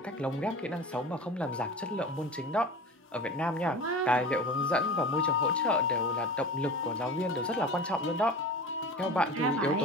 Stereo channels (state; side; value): normal; both; correlation 0.34